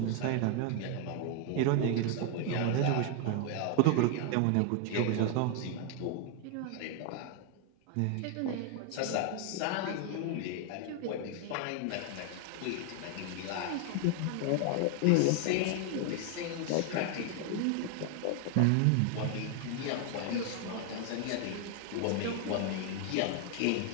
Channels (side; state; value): both; different; correlation 0.00